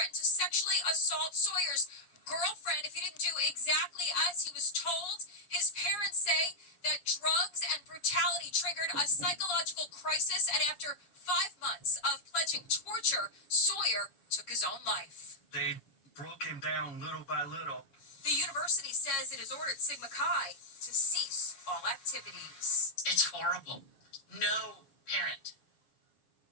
to sexually assault Sawyer's girlfriend if he didn't do exactly as he was told. His parents say that drugs and brutality triggered a psychological crisis, and after 5 months of pledging torture, Sawyer took his own life. They broke him down little by little. The university says it has ordered Sigma Chi to cease all activities. It's horrible. No parent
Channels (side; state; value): right; late; 7.3 ms